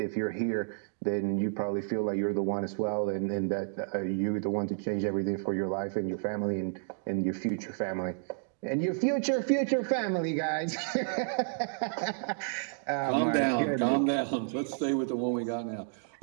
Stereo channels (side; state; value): left; silent; digital silence